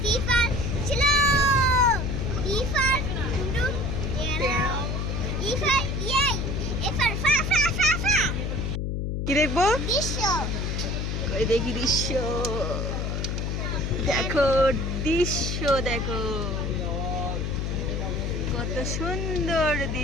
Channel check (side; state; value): left; noise; hum, 1 dB below the sound